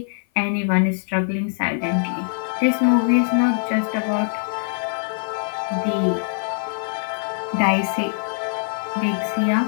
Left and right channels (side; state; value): right; silent; 57 dB below the other